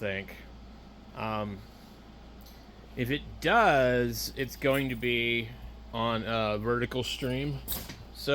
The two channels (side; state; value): both; identical; correlation 1.00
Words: Um, if it does, it's going to be on a vertical stream.